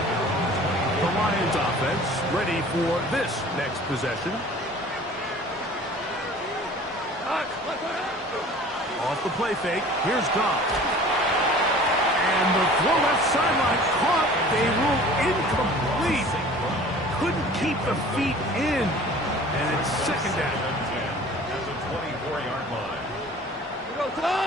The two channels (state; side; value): normal; both; correlation 0.46